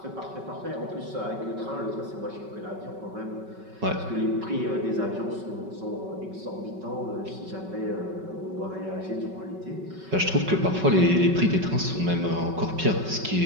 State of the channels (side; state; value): left; late; 5.3 ms